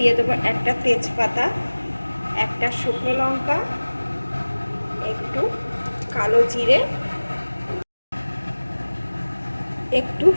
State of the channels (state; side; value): inverted; both; correlation -1.00